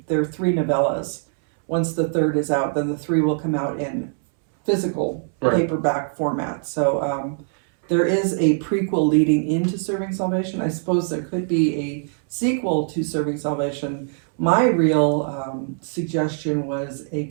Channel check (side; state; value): left; silent; 64 dB below the other